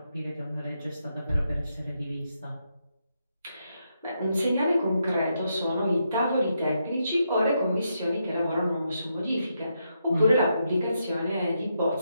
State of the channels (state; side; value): inverted; both; correlation -0.81